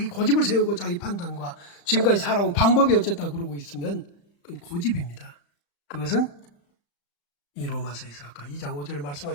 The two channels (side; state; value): right; late; 35 ms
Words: 고집을 세우고 자기 판단과 지금까지 살아온 방법이 어쨌다 그러고 있으면 그건 고집입니다. 그것은 이 로마서에서 아까 2장 5절에